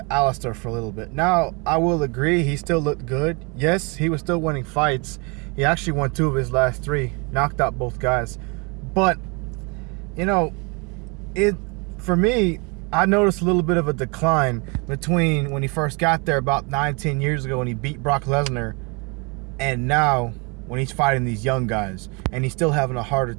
Alistair for a little bit. Now, I will agree he still looked good. Yes, he was still winning fights. He actually won 2 of his last 3, knocked out both guys. But, you know, it for me, I noticed a little bit of a decline between when he first got there about 9-10 years ago when he beat Brock Lesnar and now when he's fighting these young guys and he's still having a harder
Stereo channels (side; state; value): left; quieter; 30.5 dB